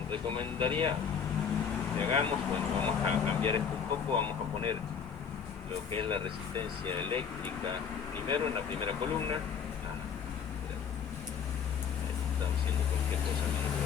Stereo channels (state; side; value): quieter; right; 7.0 dB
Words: recomendaría que hagamos, bueno, vamos a cambiar esto un poco, vamos a poner lo que es la resistencia eléctrica primero en la primera columna. Estaba haciendo cualquier cosa menos lo